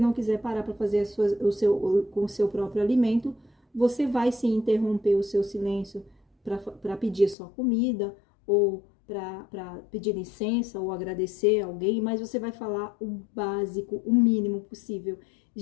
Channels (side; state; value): right; drops out; at 7.4 s